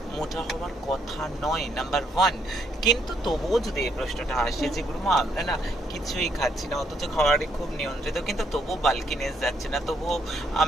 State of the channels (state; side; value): normal; both; correlation 0.72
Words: মোটা হওয়ার কথা নয়, নাম্বার ওয়ান। কিন্তু তবুও যদি এই প্রশ্নটা আসে যে গুরুমা আমরা না কিছুই খাচ্ছি না অথচ খাবারই খুব নিয়ন্ত্রিত, কিন্তু তবুও বাল্কিনেস যাচ্ছে না, তবুও